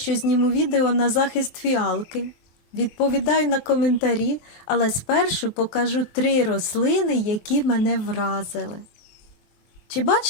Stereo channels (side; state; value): right; late; 23 ms